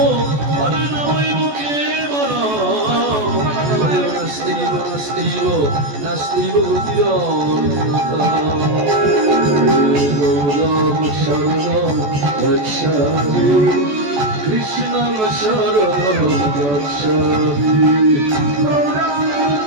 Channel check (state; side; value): late; left; 14 ms